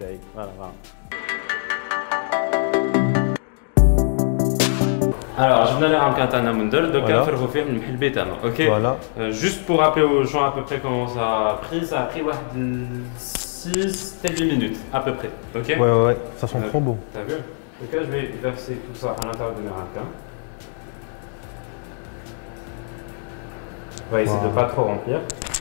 Voilà, voilà. Alors, je vais aller à un Mundel, donc on va faire faire une bétane, ok? Voilà. Juste pour rappeler aux gens à peu près comment ça a pris 6 8 minutes à peu près, ok? Ouais, ouais, ça sent trop bon. T'as vu? Donc là, je vais verser tout ça à l'intérieur de mes ramequins. On va essayer de ne pas trop remplir.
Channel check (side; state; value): right; silent; 64 dB below the other